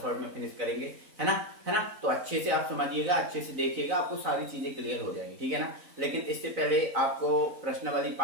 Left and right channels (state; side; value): late; left; 3.9 ms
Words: शॉट में फिनिश करेंगे, है ना। तो अच्छे से आप समझिएगा, अच्छे से देखिएगा, आपको सारी चीजें क्लियर हो जाएंगी, ठीक है ना। लेकिन इससे पहले आपको प्रश्नावली